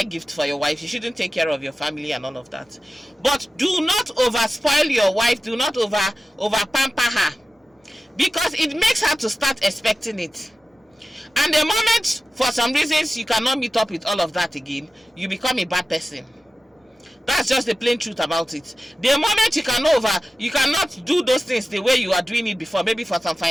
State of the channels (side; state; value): both; normal; correlation 0.95